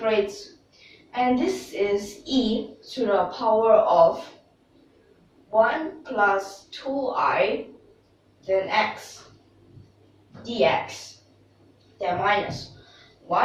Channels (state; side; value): identical; both; correlation 1.00